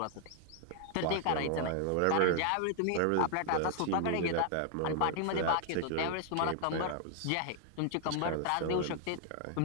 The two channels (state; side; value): different; both; correlation 0.00